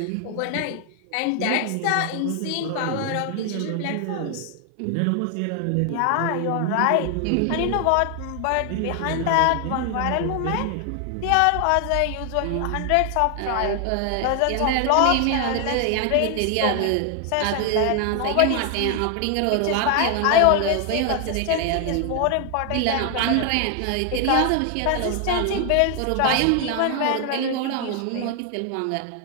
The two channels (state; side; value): different; both; correlation 0.00